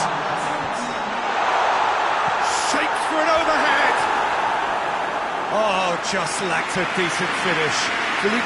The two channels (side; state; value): both; identical; correlation 1.00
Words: Shapes for an overhead. Oh, just lacked a decent finish.